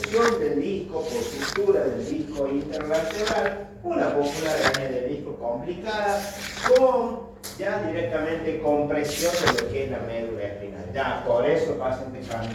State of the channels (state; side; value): identical; both; correlation 1.00